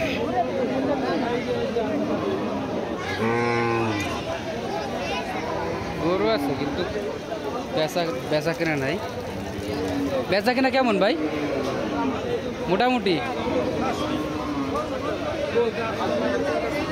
গরু আছে কিন্তু বেচা কেনা নাই। বেচা কেনা কেমন ভাই? মোটামুটি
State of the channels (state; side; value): identical; both; correlation 1.00